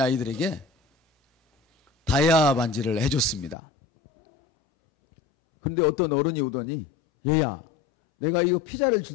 아이들에게 다이아 반지를 해줬습니다. 그런데 어떤 어른이 오더니, 얘야, 내가 이거 피자를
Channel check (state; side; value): drops out; right; at 3.6 s